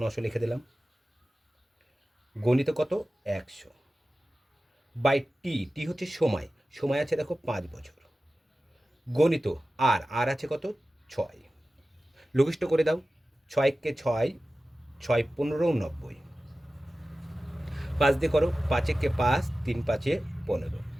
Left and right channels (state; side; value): normal; both; correlation 0.95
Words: লিখে দিলাম। গণিত কত, 100 বাই টি, টি হচ্ছে সময়, সময় আছে দেখো 5 বছর। গণিত আর আছে কত, 6। লঘিষ্ঠ করে দাও। 6 কে 6, 6 15 90। 5 দিয়ে করো, 5 কে 5, 3 5 15।